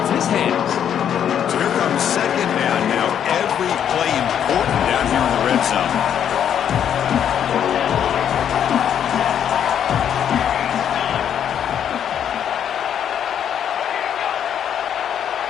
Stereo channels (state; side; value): quieter; right; 9.1 dB